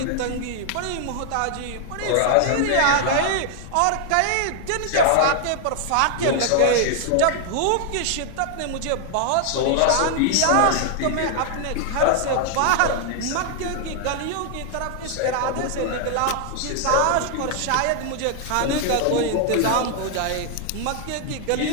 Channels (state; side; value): different; both; correlation 0.00